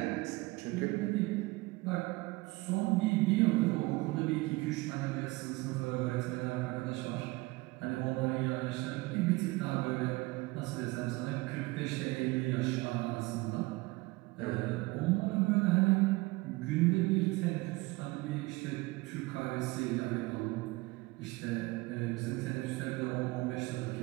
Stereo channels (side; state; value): left; quieter; 22.4 dB